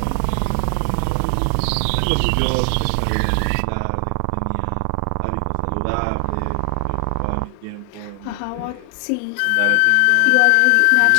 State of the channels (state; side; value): different; both; correlation 0.00